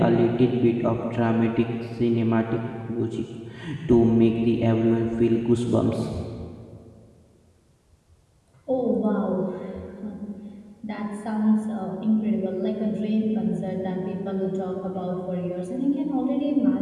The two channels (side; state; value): both; identical; correlation 1.00